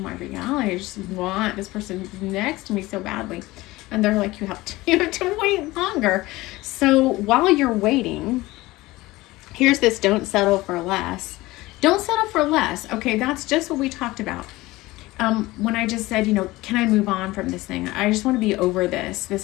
my reality? I just want this person next to me so badly. And they're like, you have to wait longer. So while you're waiting, here's this: don't settle for less. Don't settle for less. Okay, that's just what we talked about. When I just said, you know, can I move on from this thing? I just want to be over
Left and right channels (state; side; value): quieter; right; 19.5 dB